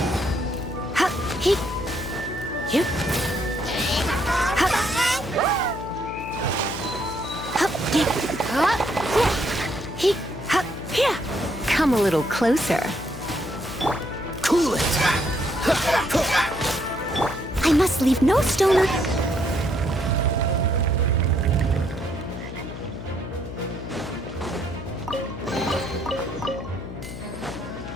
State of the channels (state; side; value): noise; left; hum, 10 dB below the sound